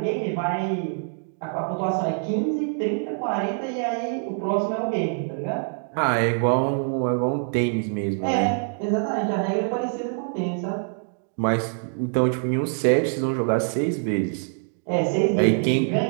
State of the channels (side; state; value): left; silent; 62 dB below the other